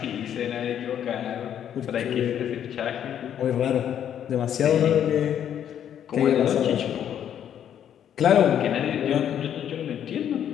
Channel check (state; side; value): quieter; right; 9.7 dB